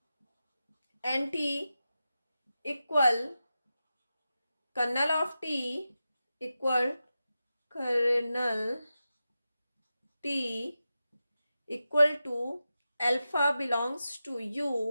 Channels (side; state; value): both; inverted; correlation -0.91